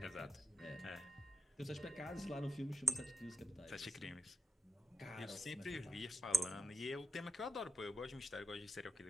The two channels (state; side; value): normal; both; correlation 0.89